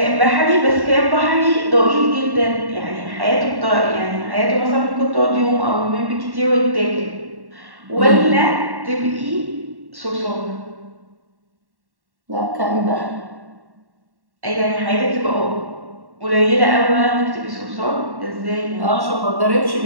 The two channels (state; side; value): late; left; 1.1 ms